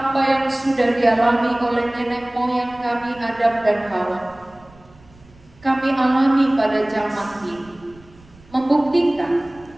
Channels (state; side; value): noise; right; rumble, 26 dB below the sound